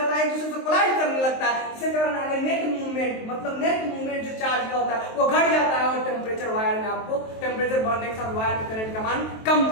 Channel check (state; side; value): late; right; 23 ms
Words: है, एक दूसरे से कोलाइड करने लगता है। इसके कारण आगे नेट मूवमेंट, मतलब नेट मूवमेंट जो चार्ज का होता है वो घट जाता है और टेम्परेचर वायर में आपको टेम्परेचर बढ़ने के साथ वायर में करंट का मान कम